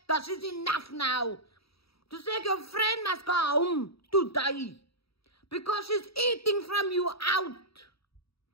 that is enough now. Toen zeg ik, your friend must go home today. Because she's eating from you out.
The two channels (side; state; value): right; late; 0.76 ms